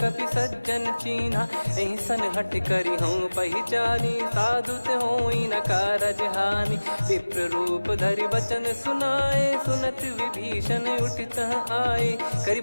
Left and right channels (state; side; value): inverted; both; correlation -1.00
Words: सज्जन चीन्हा। एहि सन हट करि हूँ पहिचानी, साधु ते होई न कारज हानि। विप्र रूप धरि वचन सुनाए, सुनत विभीषण उठित आए। करि